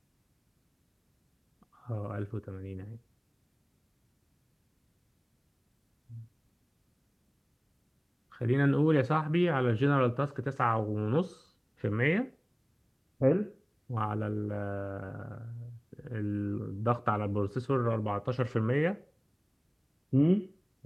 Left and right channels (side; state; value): both; identical; correlation 1.00